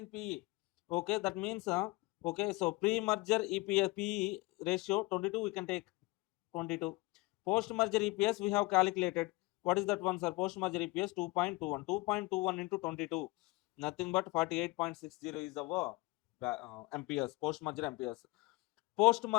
PE. Okay, that means okay, so pre-merger EPS PE ratio 22 we can take 22. Post-merger EPS we have calculated. What is that one, sir? Post-merger EPS 2.21. 2.21 into 22. Nothing but 48.60 is our MPS, post-merger MPS.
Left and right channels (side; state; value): right; quieter; 22.8 dB